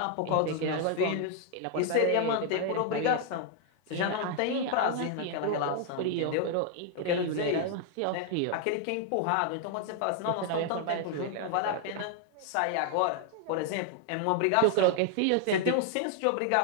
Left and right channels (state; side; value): different; both; correlation 0.00